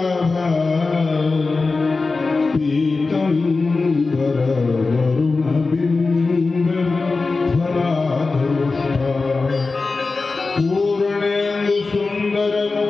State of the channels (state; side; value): quieter; right; 3.9 dB